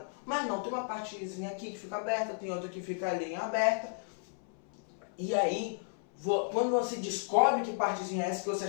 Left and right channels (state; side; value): silent; right; 55 dB below the other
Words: Mas não, tem uma partezinha aqui que fica aberta, tem outra que fica ali em aberta. E aí quando você descobre que partezinha é essa que você